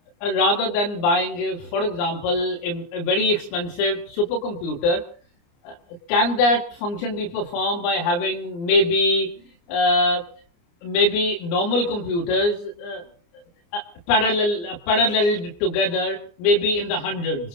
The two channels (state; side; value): late; right; 29 ms